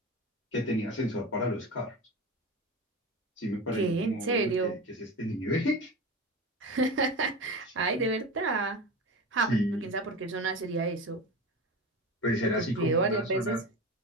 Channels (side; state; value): both; normal; correlation 0.27